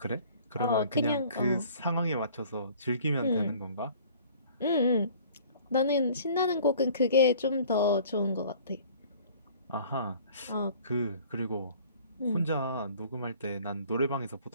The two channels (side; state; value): both; inverted; correlation -0.51